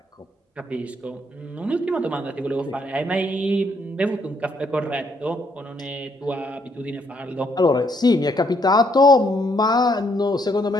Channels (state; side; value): normal; both; correlation 0.71